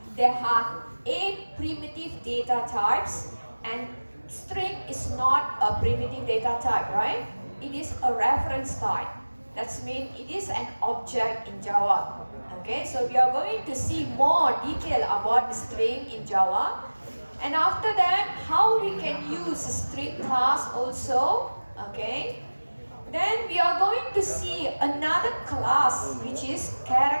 there are 8 primitive data types, and string is not a primitive data type, right? It is a reference type. That means it is an object in Java. Okay, so we are going to see more detail about the string in Java. And after that, how we can use string class also, okay? Then we are going to see another class, which is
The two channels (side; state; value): both; inverted; correlation -1.00